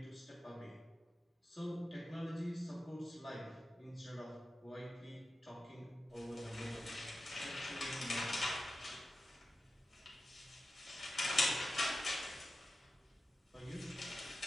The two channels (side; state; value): both; normal; correlation 0.92